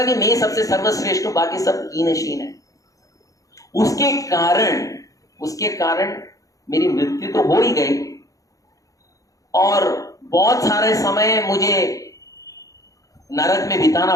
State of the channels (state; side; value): late; right; 0.17 ms